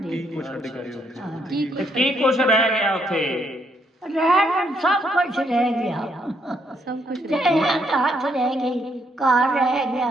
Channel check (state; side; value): normal; both; correlation 0.73